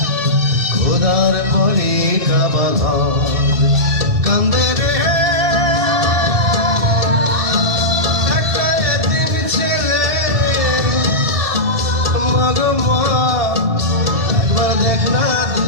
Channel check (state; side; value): late; left; 1.7 ms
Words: খোদার পরে কাবা ঘর কান্দে রে একটা এতিম ছেলে মাগো মা একবার দেখ না দু